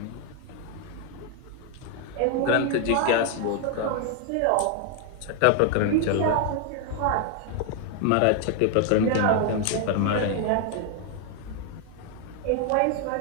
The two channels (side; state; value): both; different; correlation 0.00